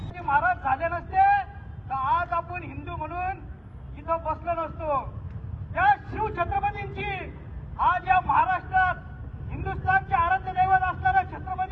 महाराज झाले नसते तर आज आपण हिंदू म्हणून इथं बसलो नसतो। त्या शिव छत्रपतींची आज या महाराष्ट्रात हिंदुस्थानचे आराध्य दैवत असणाऱ्या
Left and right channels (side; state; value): both; identical; correlation 1.00